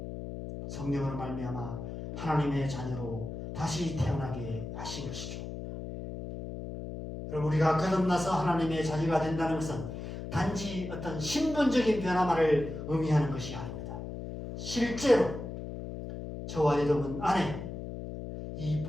성령으로 말미암아 하나님의 자녀로 다시 태어나게 하신 것이죠. 여러분, 우리가 거듭나서 하나님의 자녀가 된다는 것은 단지 어떤 신분적인 변화만을 의미하는 것이 아닙니다. 실제로 저와 여러분 안에 이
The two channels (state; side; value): noise; left; hum, 8 dB below the sound